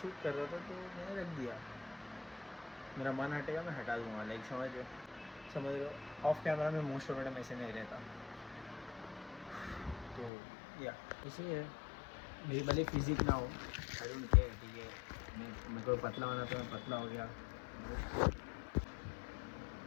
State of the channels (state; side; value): drops out; right; at 10.3 s